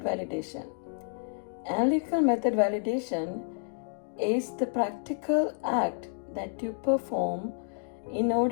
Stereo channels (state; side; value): silent; right; digital silence